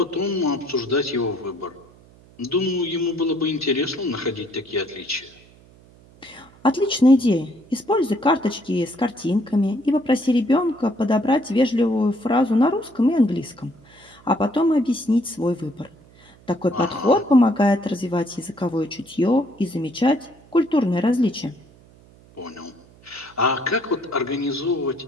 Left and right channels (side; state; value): right; noise; hum, 26 dB below the sound